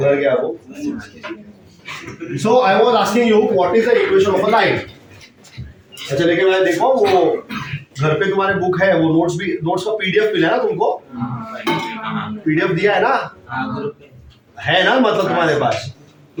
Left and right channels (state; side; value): identical; both; correlation 1.00